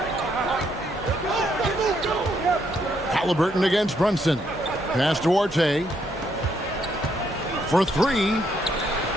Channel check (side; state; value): both; normal; correlation 0.73